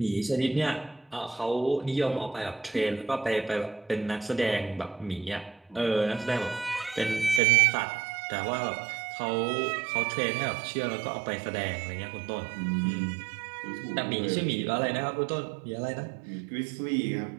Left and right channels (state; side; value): drops out; left; at 7.4 s